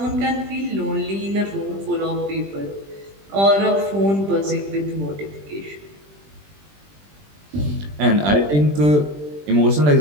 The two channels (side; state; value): left; late; 20 ms